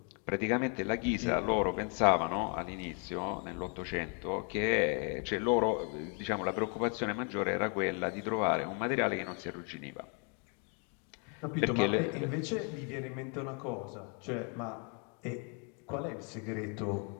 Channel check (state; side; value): quieter; right; 38.1 dB